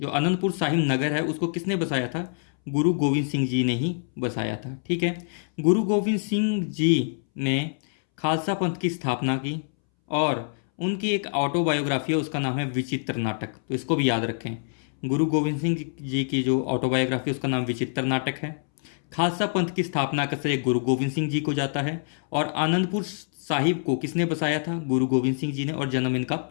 आनंदपुर साहिब नगर है, उसको किसने बसाया था? गुरु गोविंद सिंह जी ने ही बसाया था, ठीक है। गुरु गोविंद सिंह जी ने खालसा पंथ की स्थापना की। और उनकी एक ऑटोबायोग्राफी है, उसका नाम है विचित्र नाटक। तो इसको भी याद रखें, गुरु गोविंद सिंह जी की जो ऑटोबायोग्राफी उसका नाम विचित्र नाटक है। खालसा पंथ की स्थापना का श्रेय गुरु गोविंद सिंह जी को जाता है। और आनंदपुर साहिब को किसने बसाया था? गुरु गोविंद सिंह जी ने। और जन्म इनका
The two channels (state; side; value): silent; right; 61 dB below the other